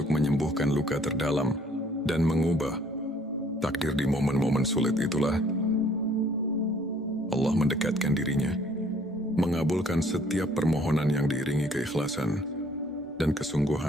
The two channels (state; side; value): normal; both; correlation 0.60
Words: menyembuhkan luka terdalam dan mengubah takdir. Di momen-momen sulit itulah Allah mendekatkan dirinya, mengabulkan setiap permohonan yang diiringi keikhlasan dan